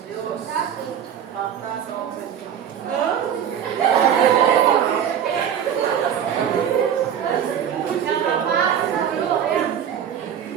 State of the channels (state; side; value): quieter; left; 8.9 dB